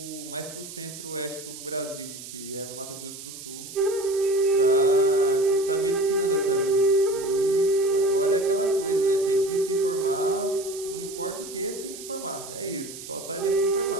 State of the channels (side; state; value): right; noise; hiss, 13 dB below the sound